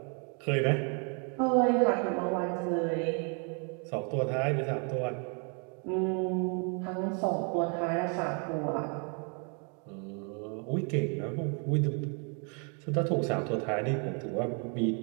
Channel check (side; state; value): left; quieter; 38.3 dB